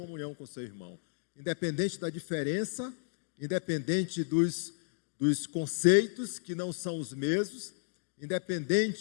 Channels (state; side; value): silent; right; digital silence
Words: com seu irmão. Independente da diferença, independente dos conceitos que não são os mesmos,